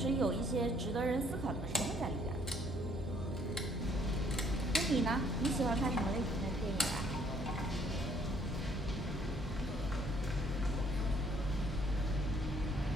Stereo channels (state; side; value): noise; right; hum, 13 dB below the sound